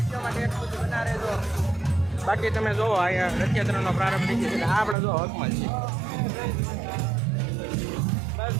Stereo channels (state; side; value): drops out; left; at 5.0 s